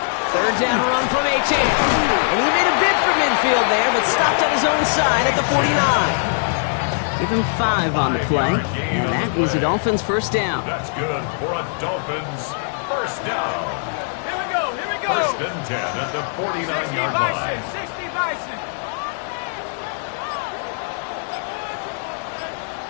3rd down run from H.A. And he made a bid for midfield there, but stopped at his own side at the 49. Give him 5 on the play. And that is a Dolphins 1st down. That's good for a Dolphins 1st down. Here we go. 1st and 10 at the 49-yard line. 60 Bison.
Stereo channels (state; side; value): silent; right; digital silence